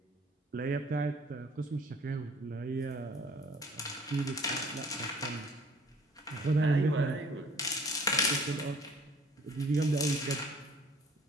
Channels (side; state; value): both; normal; correlation 0.53